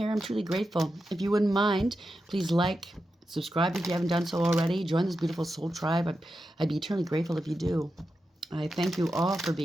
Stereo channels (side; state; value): both; normal; correlation 0.89